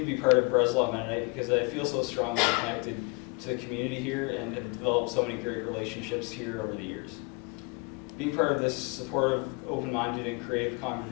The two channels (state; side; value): quieter; right; 30.8 dB